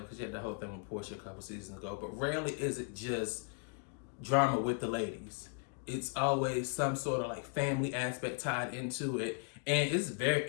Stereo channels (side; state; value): right; quieter; 37.1 dB